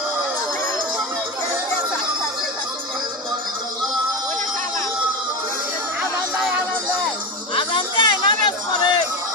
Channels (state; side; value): normal; both; correlation 0.20